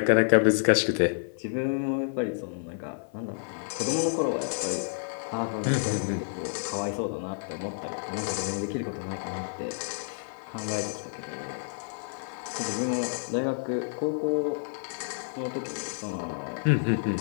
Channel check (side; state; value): right; silent; 58 dB below the other